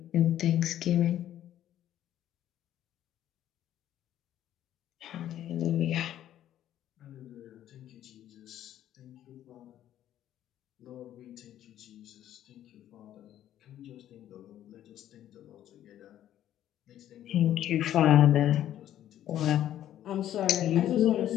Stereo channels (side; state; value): right; quieter; 11.8 dB